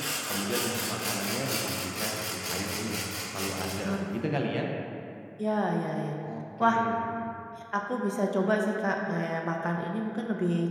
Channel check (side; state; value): both; identical; correlation 1.00